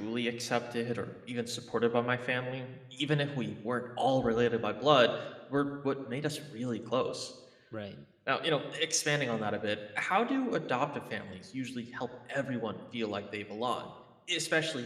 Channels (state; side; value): identical; both; correlation 1.00